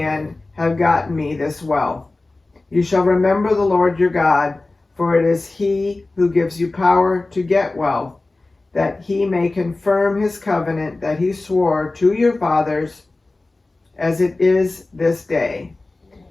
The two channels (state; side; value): quieter; right; 3.2 dB